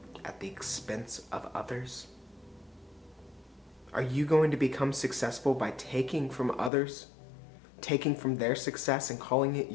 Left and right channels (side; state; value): right; drops out; at 6.7 s